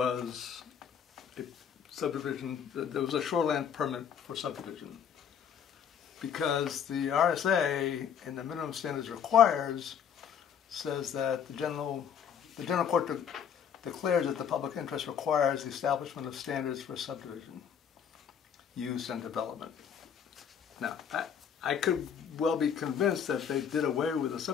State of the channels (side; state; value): right; quieter; 8.0 dB